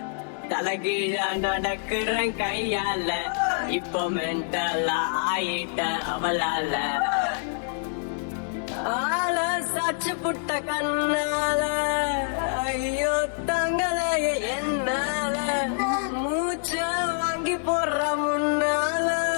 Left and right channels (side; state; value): right; silent; 61 dB below the other